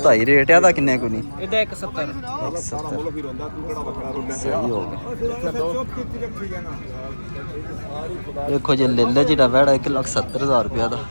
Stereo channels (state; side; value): inverted; both; correlation -1.00